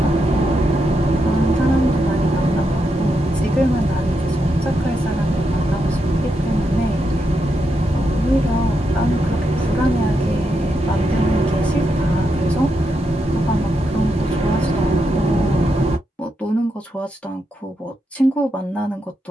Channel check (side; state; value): both; normal; correlation 0.83